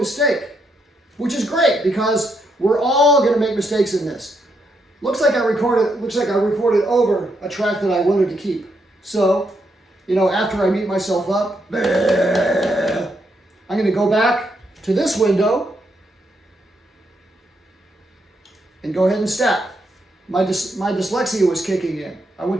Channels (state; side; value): normal; both; correlation 0.79